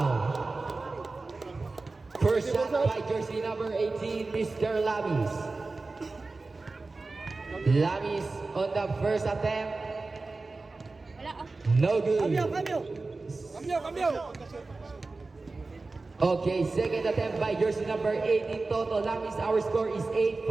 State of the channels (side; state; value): left; quieter; 3.6 dB